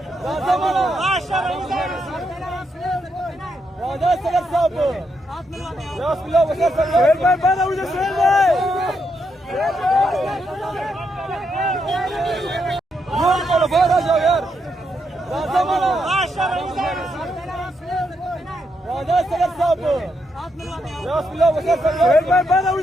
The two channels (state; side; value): normal; both; correlation 0.80